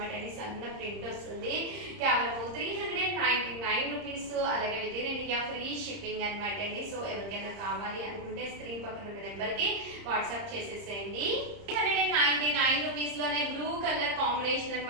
అండి. సన్న ప్రింట్ వస్తుంది. కేవలం 399 రూపీస్. అలాగే with in India free shipping అనమాట అండి. సో ఎవరికైనా కావాలి అనుకుంటే స్క్రీన్ పక్కన ఉన్న నెంబర్ కి వాట్సాప్ చేసేసేయండి. 399 రూపీస్ లోనే బ్లూ కలర్ కాంబినేషన్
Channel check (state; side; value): late; left; 30 ms